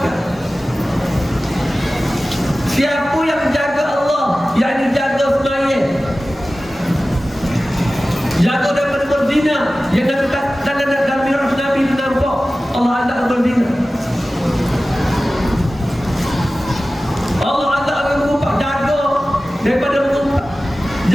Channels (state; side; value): normal; both; correlation 0.96